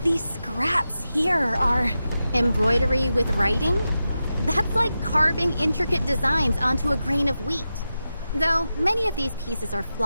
these scraps here are... embroidery with writing? That's like carving intricate designs onto a grain of wheat. Though many of these pieces are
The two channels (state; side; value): inverted; both; correlation -0.91